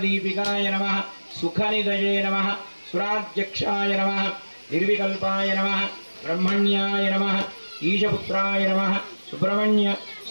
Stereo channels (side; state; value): both; inverted; correlation -1.00